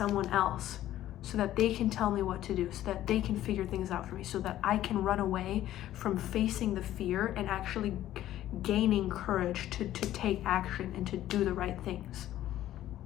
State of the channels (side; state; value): right; quieter; 13.2 dB